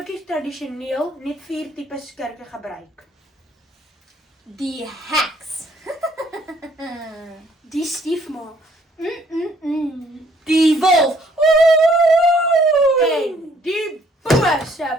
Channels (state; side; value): normal; both; correlation 0.63